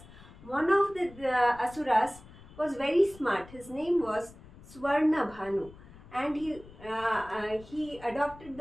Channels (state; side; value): noise; left; rumble, 20 dB below the sound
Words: One of the Asuras was very smart. His name was Swarna Bhanu, and he adopted